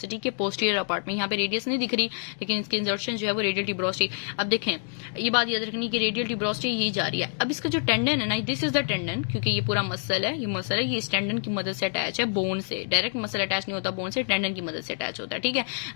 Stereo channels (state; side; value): silent; right; digital silence